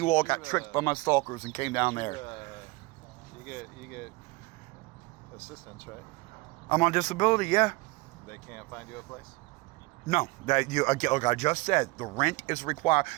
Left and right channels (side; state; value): left; quieter; 23.5 dB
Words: all got tricked by my stalkers and came down there. You get assistance, right? I'm on disability, yeah. They can't find you a place? No, like I just said, the rent is required.